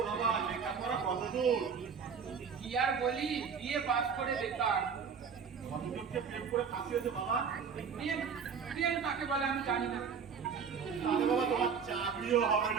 বাবা, লেখাপড়া কত দূর? কি আর বলি, বিয়ে পাস করে বেকার। কতজনকে প্রেম করে ফাঁসিয়েছে বাবা? প্রেম কাকে বলে আমি জানি না। তাহলে বাবা তোমার চাকরিও হবে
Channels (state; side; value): quieter; left; 6.3 dB